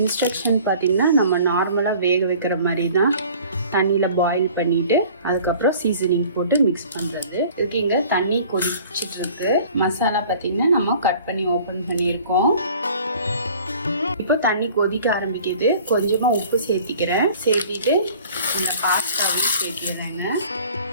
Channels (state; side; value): inverted; both; correlation -0.49